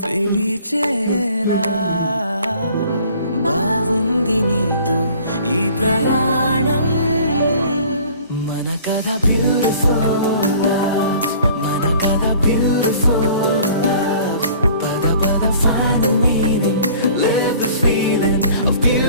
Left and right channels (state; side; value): inverted; both; correlation -0.50